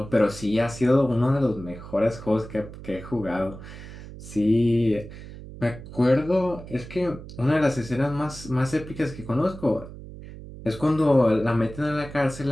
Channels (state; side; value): noise; right; hum, 14 dB below the sound